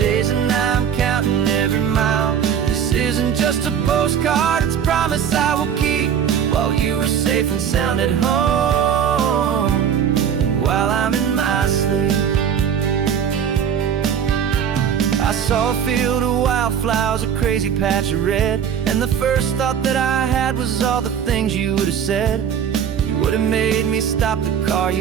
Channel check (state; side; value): quieter; left; 8.3 dB